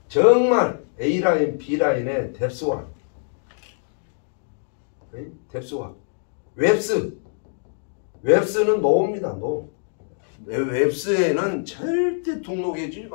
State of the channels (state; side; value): silent; right; digital silence